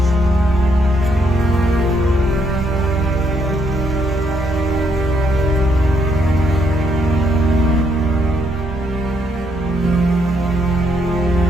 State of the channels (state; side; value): normal; both; correlation 0.73